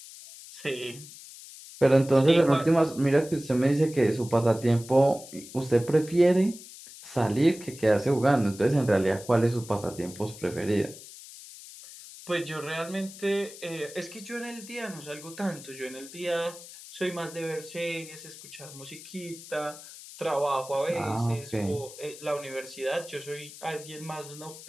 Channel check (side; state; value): left; noise; hiss, 16 dB below the sound